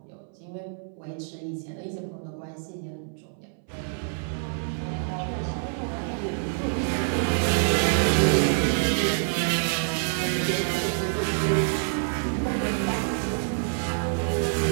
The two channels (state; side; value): silent; left; 60 dB below the other